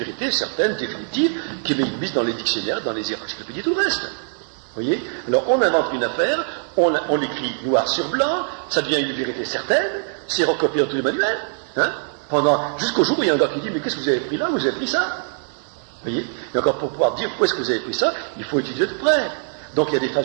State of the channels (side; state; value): left; silent; digital silence